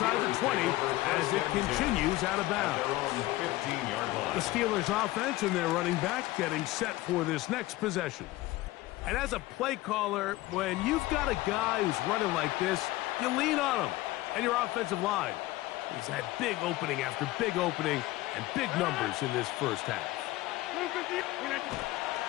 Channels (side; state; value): right; quieter; 18.0 dB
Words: the 20 as it continues out of bounds. The Steelers offense and their running back getting set for this next possession. And as a play caller, when you've got a guy who's running like this, you lean on him and your offensive line. He's had big opening after big opening and big numbers in this first half.